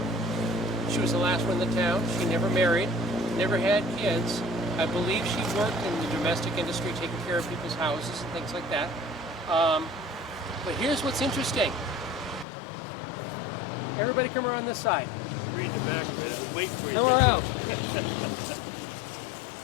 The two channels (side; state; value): right; drops out; at 12.5 s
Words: She was the last one in the town. She never married, never had kids. I believe she worked in the domestic industry, taking care of people's houses and things like that. But here's what's interesting. Everybody come around this side. Read the back of it. I was waiting for you. Come around.